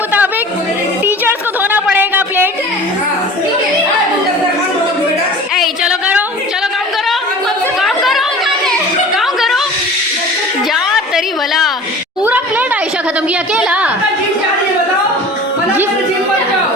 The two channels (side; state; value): both; normal; correlation 0.41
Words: टीचर्स को धोना पड़ेगा प्लेट। ए चलो काम करो जा तेरी भला। पूरा प्लेट आयशा खत्म किया अकेला।